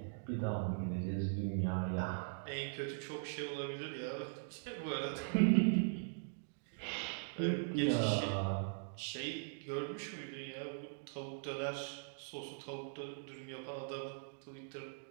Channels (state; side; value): silent; left; digital silence